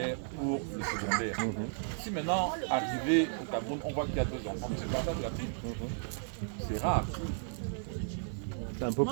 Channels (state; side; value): silent; left; digital silence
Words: pour le secondaire. Si maintenant, arrivé au Cameroun, on voit qu'il y a 2 enfants, c'est le partage de la ville. C'est rare. Ça ne peut